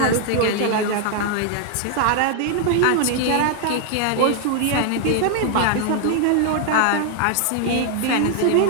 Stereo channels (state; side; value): different; both; correlation 0.00